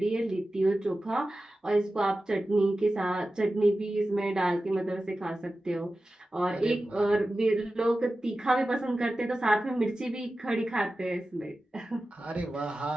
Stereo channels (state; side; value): normal; both; correlation 0.94